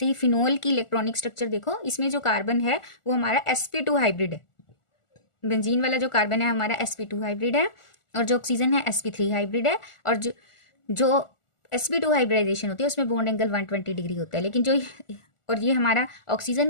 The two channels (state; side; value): late; right; 1.4 ms